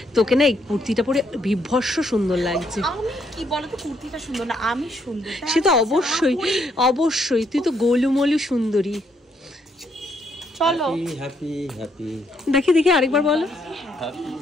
তোকে না এই কুর্তিটা পরে বিভৎস সুন্দর লাগছে। আমি কি বলো তো, কুর্তিটা সুন্দর না, আমি সুন্দর। সে তো অবশ্যই অবশ্যই, তুই তো গোলুমলু সুন্দরী। চলো হ্যাপি হ্যাপি, দেখি দেখি আরেকবার বলো।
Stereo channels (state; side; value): normal; both; correlation 0.73